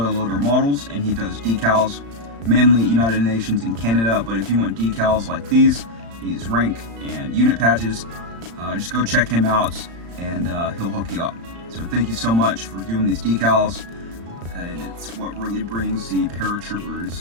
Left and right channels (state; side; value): late; left; 35 ms